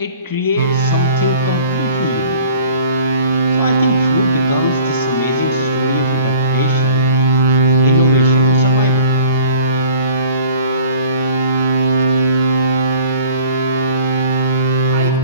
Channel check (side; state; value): both; inverted; correlation -0.49